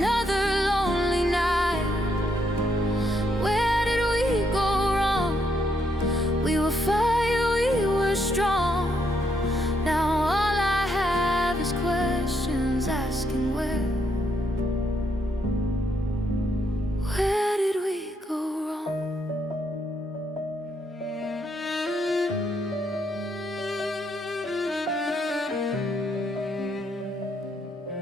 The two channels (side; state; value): both; normal; correlation 0.76